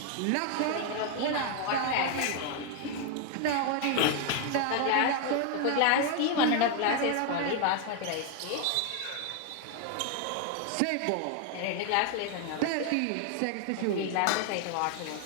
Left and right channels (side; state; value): both; different; correlation 0.00